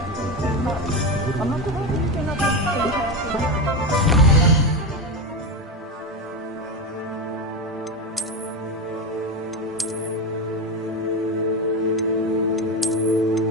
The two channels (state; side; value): normal; both; correlation 0.16